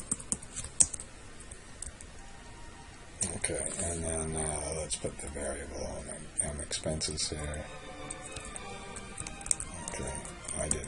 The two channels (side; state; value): both; identical; correlation 1.00